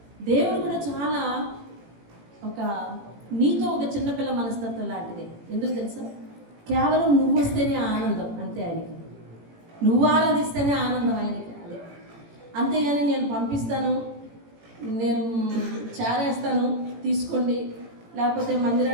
దేవుడు కూడా చాలా నీతో ఒక చిన్నపిల్ల మనస్తత్వం లాంటిదే. ఎందుకు తెలుసా? కేవలం నువ్వు వస్తేనే ఆనందం, అంతే ఆయనకి. నువ్వు ఆరాధిస్తేనే ఆనందం ఆయనకి, అదే. అంతేగాని నేను పంపిస్తాను, నేను చేరేస్తాను తీసుకోండి, లేకపోతే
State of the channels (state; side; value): late; left; 18 ms